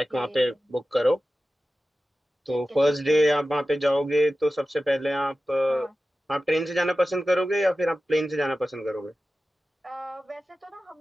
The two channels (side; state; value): both; normal; correlation 0.94